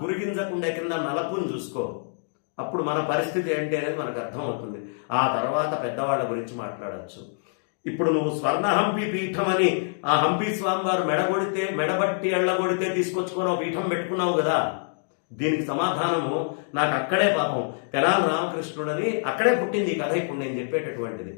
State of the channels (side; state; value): right; silent; digital silence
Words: గురిగింజకుండే కింద నలపుని చూసుకో. అప్పుడు మన పరిస్థితి ఏంటి అనేది మనకు అర్థమవుతుంది. ఆ తర్వాత పెద్దవాళ్ళ గురించి మాట్లాడచ్చు. ఇప్పుడు నువ్వు స్వర్ణ హంపి పీఠం అని ఆ హంపి స్వామి వారు మెడబట్టి ఎళ్ళగొడితే తీసుకొచ్చుకొని పీఠం పెట్టుకున్నావు కదా, దీనికి సమాధానము నాకు అక్కడే పాపం తెనాలి రామకృష్ణుడని అక్కడే పుట్టింది ఈ కథ. ఇప్పుడు నేను చెప్పేటటువంటిది